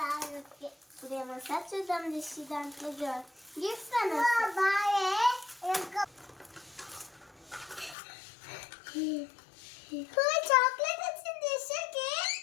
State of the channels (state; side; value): drops out; right; at 8.0 s